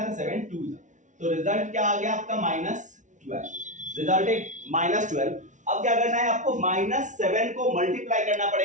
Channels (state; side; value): late; left; 0.36 ms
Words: तो 7 2 जा, तो रिजल्ट क्या आ गया आपका -12, रिजल्ट है -12। अब क्या करना है आपको -7 को मल्टीप्लाई करना